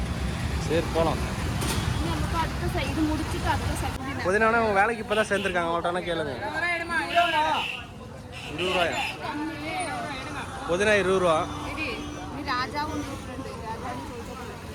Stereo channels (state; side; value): identical; both; correlation 1.00